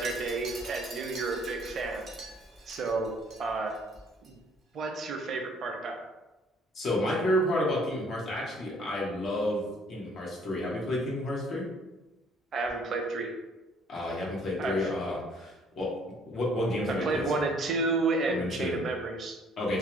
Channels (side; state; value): both; normal; correlation 0.59